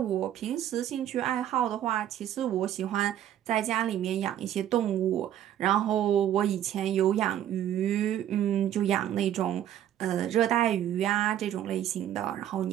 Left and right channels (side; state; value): left; quieter; 11.2 dB